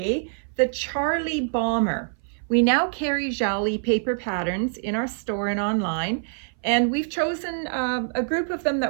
the Charlie Bomber. We now carry Jalie paper patterns in our store and online. And we've chosen a group of them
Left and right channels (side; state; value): left; silent; 59 dB below the other